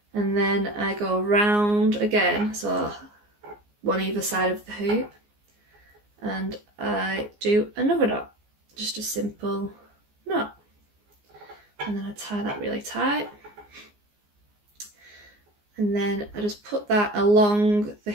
and then I go round again, so one either side of the hoop, and I do another knot, just a simple knot, and then I tie that really tight, and then I just put that along the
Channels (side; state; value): left; late; 14 ms